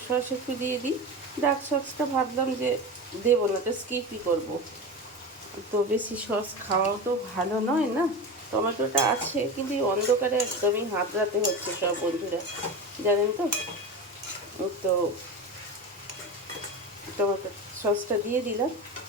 সস একটু দিয়ে দিই। ডার্ক সসটা ভাবলাম যে দেবো না, তো স্কিপই করবো। তো বেশি সস খাওয়াও তো ভালো নয় না। টমেটোটা আছে কিন্তু এই অন্ধকারে একদমই হাতড়াতে হচ্ছে সব বন্ধুরা, জানেন তো। তো টমেটো সসটা দিয়ে দিলাম।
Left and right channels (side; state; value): both; normal; correlation 0.25